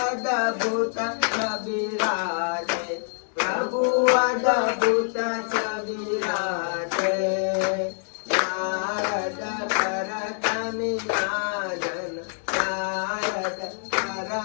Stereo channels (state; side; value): silent; right; 59 dB below the other